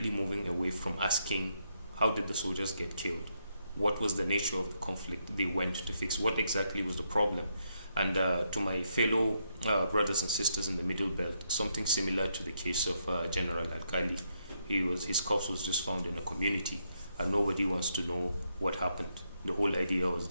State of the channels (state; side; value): inverted; both; correlation -0.79